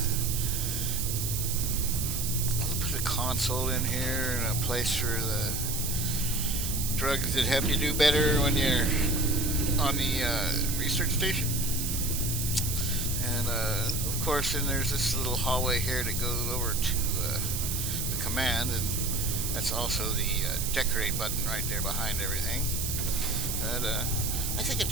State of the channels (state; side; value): noise; right; hiss, 2 dB below the sound